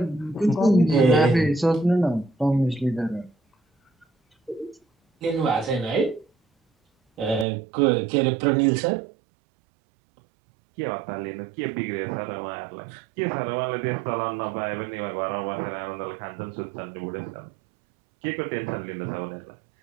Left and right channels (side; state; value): left; drops out; at 7.5 s